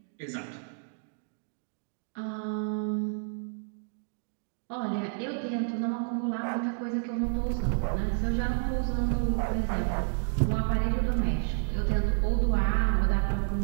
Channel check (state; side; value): silent; left; digital silence